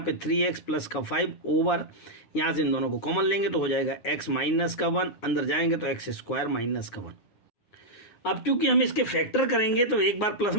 3x प्लस का 5 ओवर, यहाँ से इन दोनों को कॉमन लेंगे तो हो जाएगा x माइनस का 1, अंदर जाएंगे तो एक्स स्क्वायर माइनस का 1। अब चूंकि हम इसके फैक्टर करेंगे तो एक बार प्लस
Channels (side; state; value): right; late; 9.6 ms